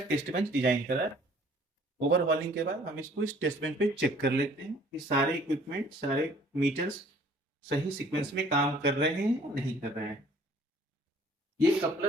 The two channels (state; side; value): normal; both; correlation 0.55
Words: टेस्ट बेंच डिजाइन करा। ओवरहॉलिंग के बाद हम इसको इस टेस्ट बेंच पे चेक कर लेते हैं कि सारे इक्विपमेंट, सारे मीटर्स सही सीक्वेंस में काम कर रहे हैं या नहीं कर रहे हैं। ये